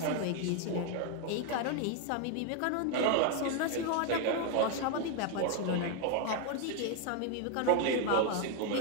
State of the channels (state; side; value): different; both; correlation 0.01